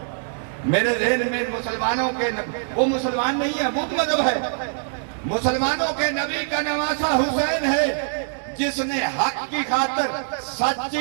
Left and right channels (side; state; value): left; silent; digital silence